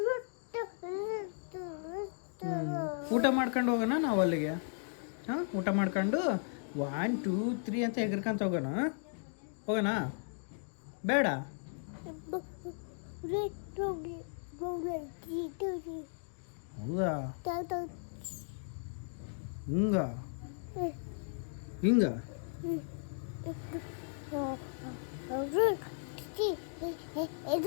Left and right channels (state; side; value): silent; right; digital silence